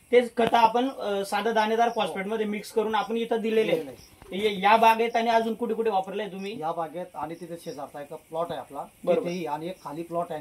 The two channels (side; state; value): both; identical; correlation 1.00